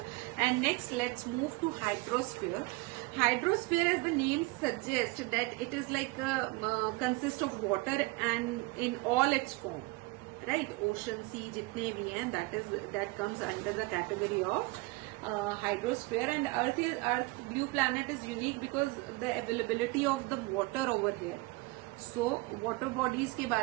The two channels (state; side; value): quieter; left; 23.3 dB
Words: And next let's move to hydrosphere. Hydrosphere, as the name suggests, that it is like consists of water and in all its form, right? Ocean, sea, jitne bhi hain, that comes under the category of hydrosphere. And Earth blue planet is unique because the availability of the water over here. So water bodies के